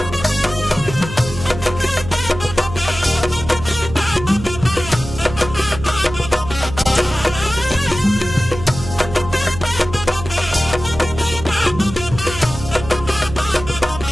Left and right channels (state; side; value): noise; right; hum, 10 dB below the sound